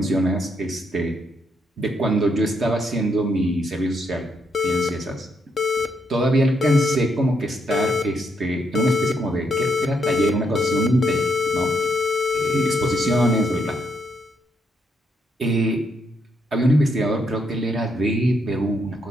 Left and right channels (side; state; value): both; normal; correlation 0.77